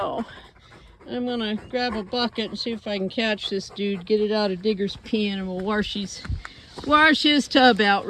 I'm gonna grab a bucket and see if I can catch this dude, get it out of Digger's pen, and we'll wash his tub out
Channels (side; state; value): both; identical; correlation 1.00